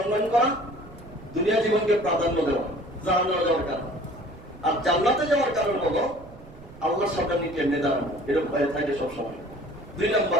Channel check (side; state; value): right; noise; rumble, 19 dB below the sound